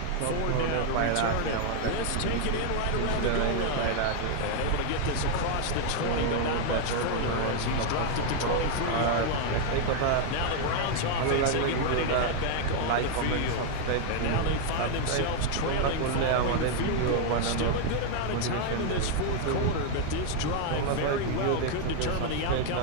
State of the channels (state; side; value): different; both; correlation 0.00